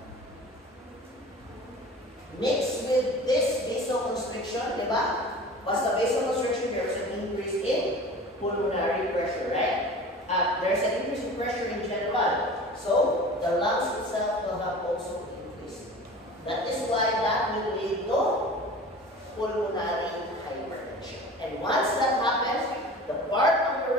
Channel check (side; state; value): both; normal; correlation 0.39